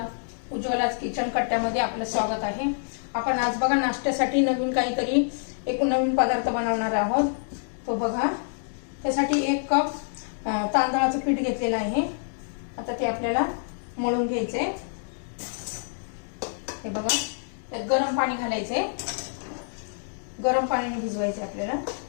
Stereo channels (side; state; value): right; silent; digital silence